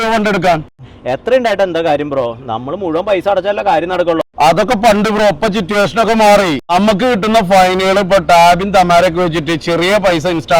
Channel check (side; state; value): both; identical; correlation 1.00